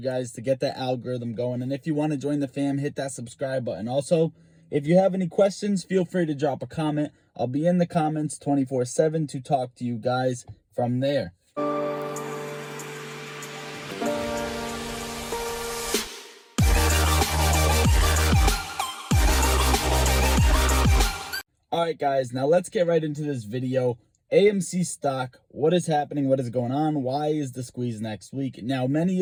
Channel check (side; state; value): both; identical; correlation 1.00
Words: guys to get that algorithm going. And if you want to join the fam, hit that subscribe button. Also, if you have any questions, feel free to drop a comment. I'll be in the comments 24/7 to talk to you guys from there. All right, guys, now let's get right into this video. AMC stock, what is happening? What is going on? Why is the squeeze next week? Now, many